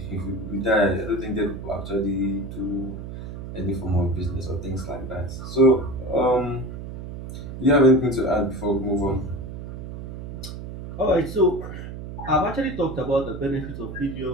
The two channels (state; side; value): noise; right; hum, 9 dB below the sound